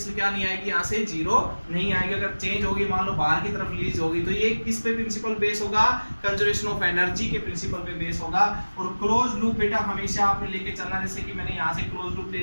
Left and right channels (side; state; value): both; inverted; correlation -1.00